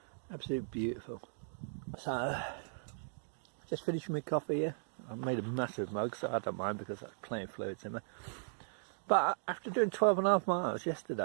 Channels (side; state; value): left; silent; digital silence